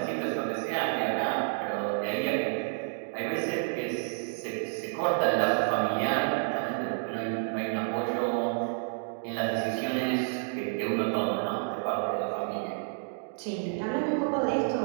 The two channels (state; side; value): silent; left; digital silence